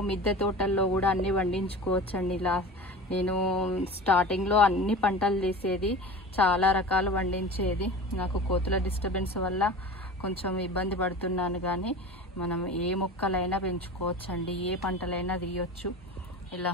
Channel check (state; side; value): normal; both; correlation 0.34